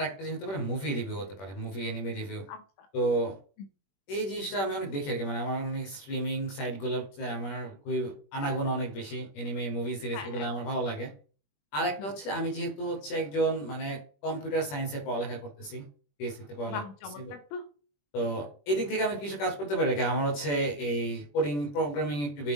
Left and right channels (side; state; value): right; late; 21 ms